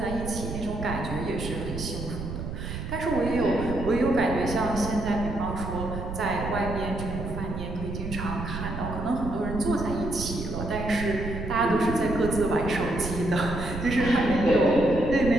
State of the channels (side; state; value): right; noise; rumble, 6 dB below the sound